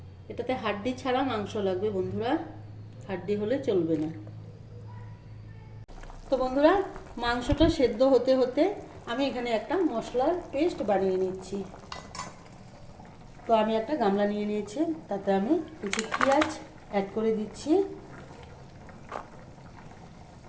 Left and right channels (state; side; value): identical; both; correlation 1.00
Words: এটাতে হাড্ডি ছাড়া মাংস লাগবে বন্ধুরা, হাড্ডি হলে চলবে না। তো বন্ধুরা মাংসটা সেদ্ধ হতে হতে আমি এখানে একটা মশলার পেস্ট বানিয়ে নিচ্ছি। তো আমি একটা গামলা নিয়ে নিয়েছি, তাতে আমি কিছু পেঁয়াজ অ্যাড করে দিচ্ছি।